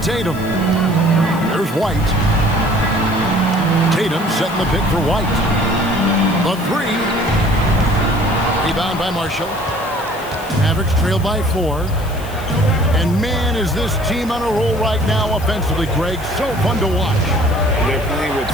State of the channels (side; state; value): left; noise; hiss, 18 dB below the sound